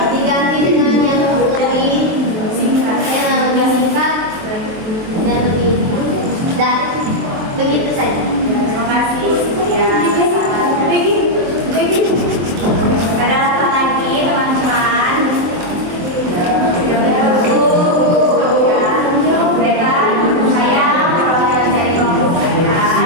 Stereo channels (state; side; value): late; left; 23 ms